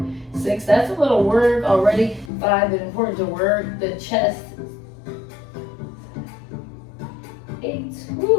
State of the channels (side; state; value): right; drops out; at 2.3 s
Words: 6. That's a little work already. 5, but important to work the chest